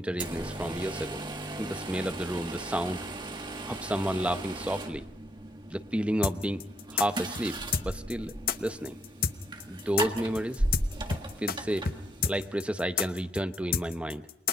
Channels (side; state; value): both; normal; correlation 0.73